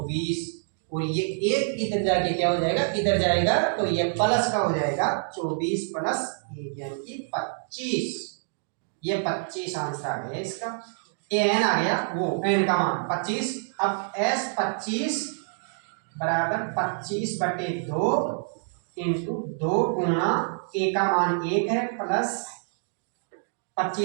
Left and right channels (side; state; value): left; silent; digital silence